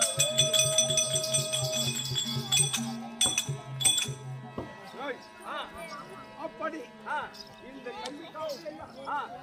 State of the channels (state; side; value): identical; both; correlation 1.00